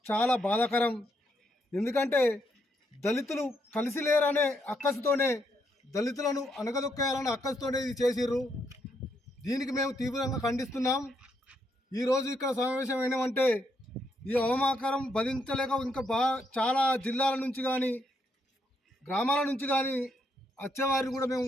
చాలా బాధాకరం. ఎందుకంటే దళితులు కలిసి లేరనే అక్కసుతోనే దళితులను అణగదొక్కేయాలనే అక్కసుతోనే ఇది చేసిర్రు. దీనికి మేము తీవ్రంగా ఖండిస్తున్నాం. ఈరోజు ఇక్కడ సమావేశం అయినామంటే ఈ అవమాకరం భరించలేక ఇంకా చాలా జిల్లాల నుంచి కానీ గ్రామాల నుంచి కానీ వచ్చేవారిని కూడా మేము,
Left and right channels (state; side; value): normal; both; correlation 0.77